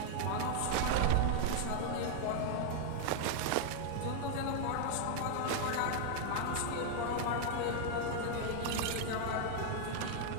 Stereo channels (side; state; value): both; different; correlation 0.00